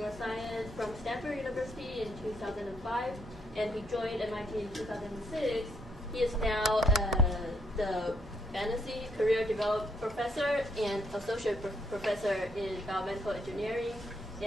from Stanford University in 2005, and he joined MIT in 2006. He is now the Fantasy Career Development Professor and Associate Professor in Biomedical Engineering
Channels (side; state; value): both; normal; correlation 0.72